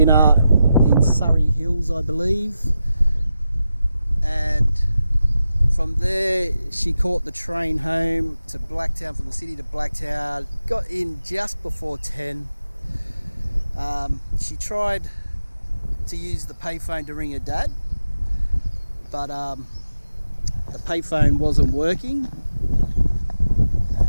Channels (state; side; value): inverted; both; correlation -0.90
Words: in Surrey Hills, I believe, and from there she caught the train home to Blacktown, from the city to Blacktown, got in just before 10. She tried to use the payphone to ring her dad, but the payphone wasn't working.